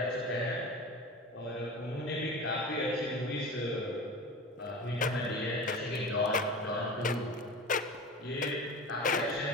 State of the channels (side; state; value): both; normal; correlation 0.32